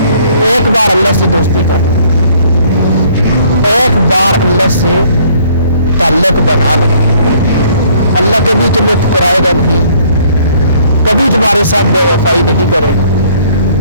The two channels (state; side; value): inverted; both; correlation -0.61